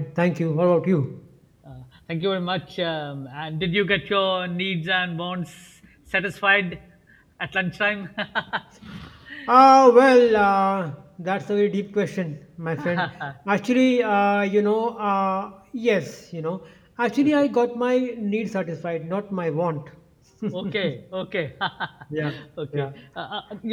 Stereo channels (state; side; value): identical; both; correlation 1.00